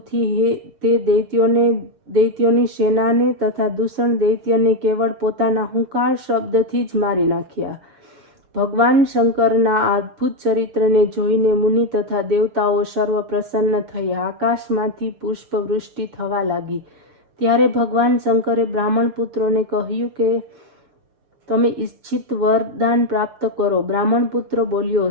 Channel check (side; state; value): left; late; 6.7 ms